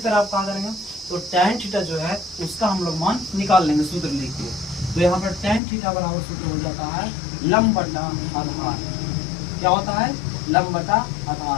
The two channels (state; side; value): drops out; right; at 5.6 s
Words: आप कहाँ करेंगे, तो tan थीटा जो है उसका हम लोग मान निकाल लेंगे सूत्र लिख के। तो यहाँ पर tan थीटा बराबर सूत्र हो जाता है लंब बटा आधार। क्या होता है, लंब बटा